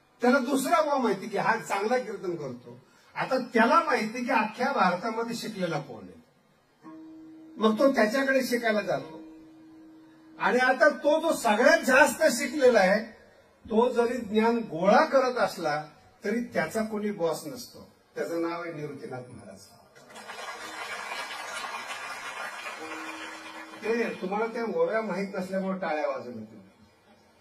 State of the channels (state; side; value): identical; both; correlation 1.00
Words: त्याला दुसरा बुवा माहिती की हा चांगला कीर्तन करतो. आता त्याला माहिती की अख्ख्या भारतामध्ये शिकलेला कोण आहे. मग तो त्याच्याकडे शिकायला जातो. आणि आता तो जो सगळ्यात जास्त शिकलेला आहे तो जरी ज्ञान गोळा करत असला तरी त्याचा कोणी बॉस नसतो. त्याचं नाव आहे निवृत्तीनाथ महाराज. ते तुम्हाला त्या ओव्या माहीत नसल्यामुळे टाळ्या वाजवल्या तुम्ही.